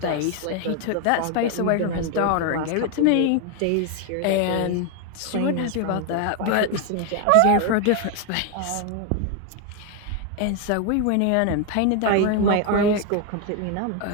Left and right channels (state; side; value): different; both; correlation 0.01